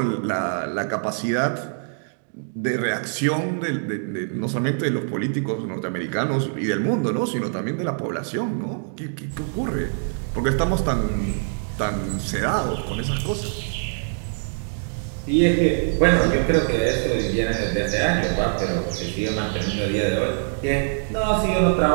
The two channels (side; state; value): left; silent; digital silence